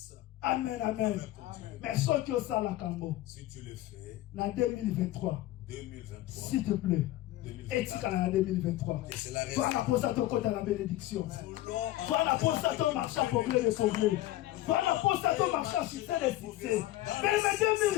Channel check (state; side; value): quieter; right; 15.7 dB